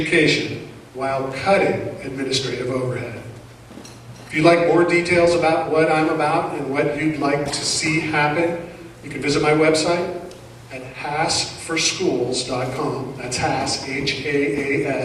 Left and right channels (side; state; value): both; identical; correlation 1.00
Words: while cutting administrative overhead. If you'd like more details about what I'm about and what you'd like to see happen, you can visit my website at haasforschools.com. That's Haas,